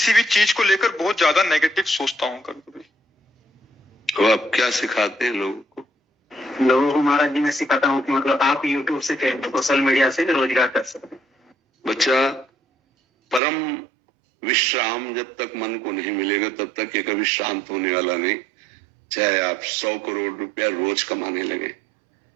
भी चीज को लेकर बहुत ज्यादा नेगेटिव सोचता हूँ कभी कभी। तो आप क्या सिखाते हैं लोगों को? लोगों को महाराज जी मैं सिखाता हूँ कि मतलब आप YouTube से सोशल मीडिया से रोजगार कर सकते हैं। बच्चा, परम विश्राम जब तक मन को नहीं मिलेगा तब तक ये कभी शांत होने वाला नहीं। चाहे आप 100 करोड़ रुपया रोज कमाने लगे,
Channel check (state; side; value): drops out; left; at 13.4 s